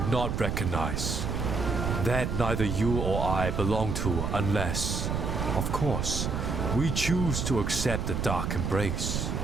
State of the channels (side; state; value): right; noise; rumble, 1 dB below the sound